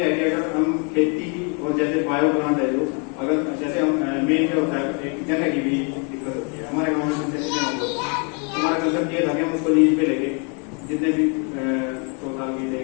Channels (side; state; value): right; quieter; 36.3 dB